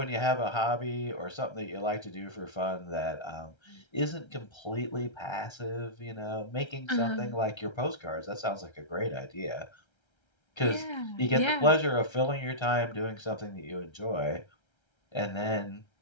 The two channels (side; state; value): right; late; 1.3 ms